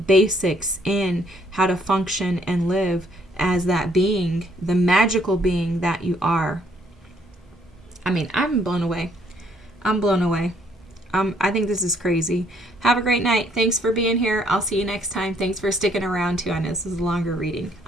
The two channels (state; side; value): normal; both; correlation 0.66